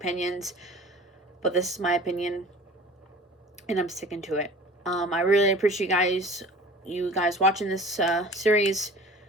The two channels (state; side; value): normal; both; correlation 0.43